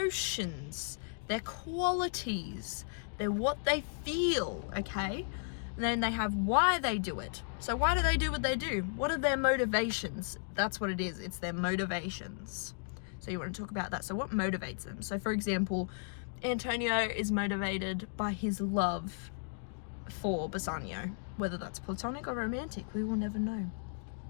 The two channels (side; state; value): right; silent; digital silence